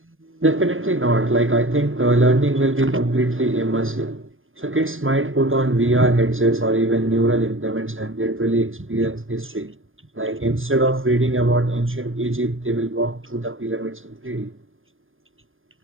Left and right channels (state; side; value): late; left; 0.59 ms